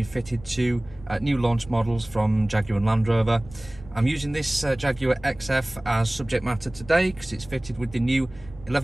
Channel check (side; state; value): right; noise; rumble, 20 dB below the sound